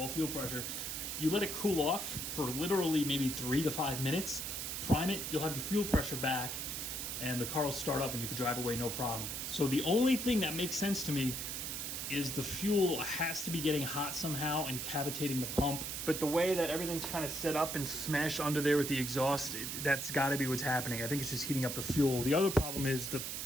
fuel pressure. You let it cool off for literally maybe 3 to 5 minutes, prime it, you'll have your fuel pressure back, and the car will start up and you can drive away no problem. So the only thing that makes sense to me is the fuel has to be getting hot somehow and cavitating the pump. But the way that everything's kind of set up and smashed under there with the exhaust, that's got to be what's happening. I think it's just heating up the fuel. The other problem is the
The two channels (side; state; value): right; noise; hiss, 4 dB below the sound